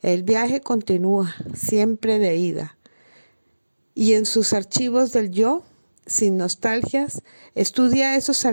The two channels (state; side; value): inverted; both; correlation -1.00